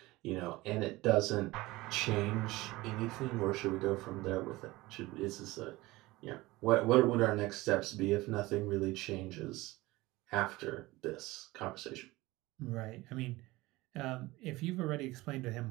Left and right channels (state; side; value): quieter; left; 20.0 dB